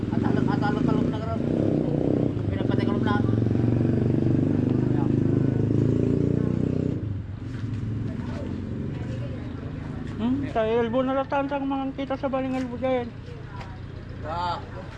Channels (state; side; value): identical; both; correlation 1.00